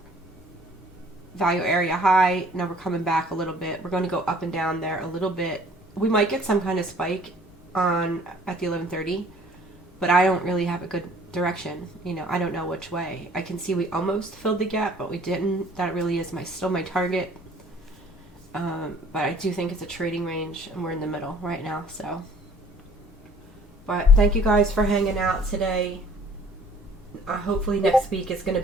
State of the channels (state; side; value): normal; both; correlation 0.54